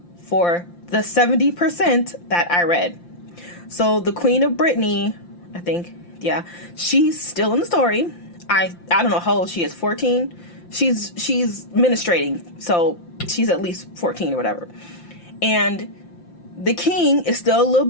for the 70% that I read. So the Queen of Brittany, I think, yeah, she's still in the story. I don't know how old she is, 14? She's ministrating, so she's at least 14 or whatever. And the king is still a little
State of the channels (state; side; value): late; right; 5.8 ms